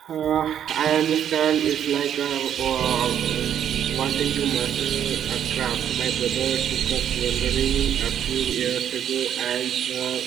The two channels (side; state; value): left; quieter; 9.6 dB